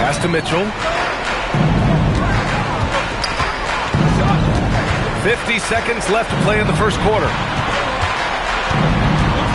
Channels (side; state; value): both; identical; correlation 1.00